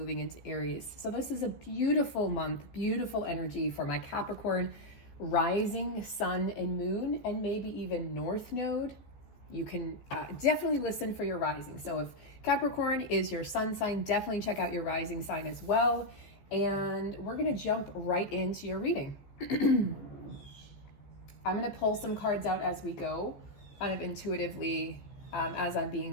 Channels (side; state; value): right; late; 14 ms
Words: into Aries. So this is a beautiful month, beautiful energy for my Capricorn, rising sun and moon, and maybe even north node. You can definitely listen for your rising. So if Capricorn is your sun sign, definitely check out your rising sign as well. And we're going to jump right into your reading. I'm going to pull some cards out as we go, kind of intuitively, as I'm